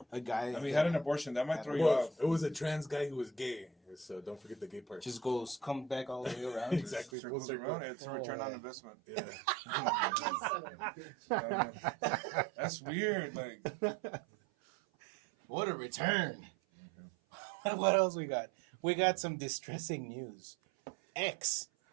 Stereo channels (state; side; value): drops out; left; at 7.1 s